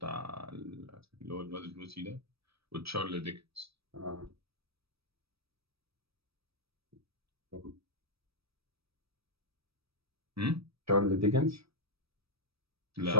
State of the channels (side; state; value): left; late; 0.77 ms